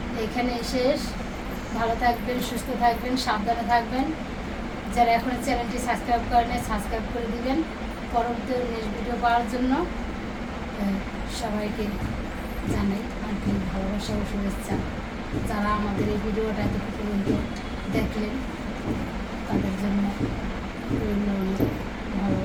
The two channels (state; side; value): identical; both; correlation 1.00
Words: এখানে শেষ ভালো থাকবেন সুস্থ থাকবেন সাবধানে থাকবেন যারা এখন চ্যানেলটি সাবস্ক্রাইব করেন সাবস্ক্রাইব করে দিবেন পরবর্তী নেক্সট ভিডিও পাওয়ার জন্য সবাইকে জানাই আন্তরিক ভালোবাসা ও শুভেচ্ছা যারা আমাদের এই ভিডিওটা এত পর্যন্ত দেখলেন তাদের জন্য রইল অনেক